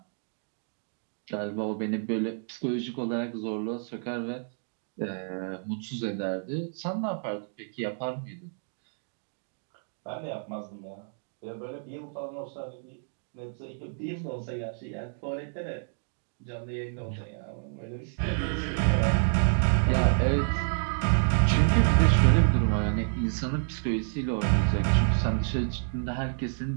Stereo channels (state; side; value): silent; left; digital silence